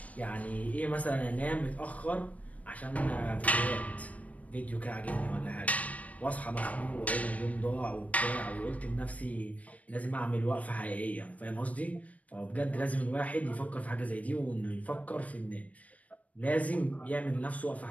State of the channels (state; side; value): late; right; 0.068 ms